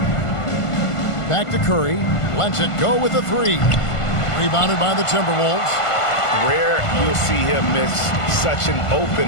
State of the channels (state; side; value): late; right; 1.5 ms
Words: Back to Curry. Lets it go with a three. Rebounded by the Timberwolves. Rare you'll see him miss such an